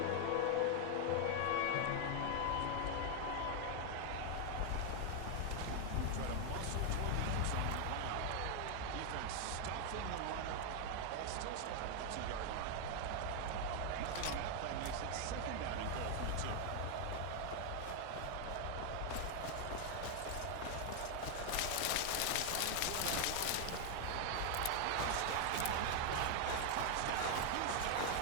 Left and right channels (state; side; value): different; both; correlation 0.00